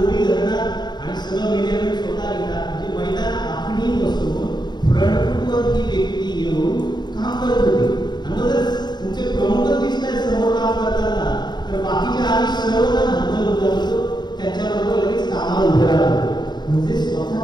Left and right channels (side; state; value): right; late; 0.21 ms